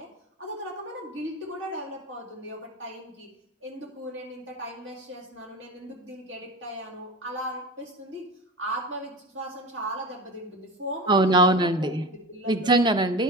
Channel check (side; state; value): both; normal; correlation 0.30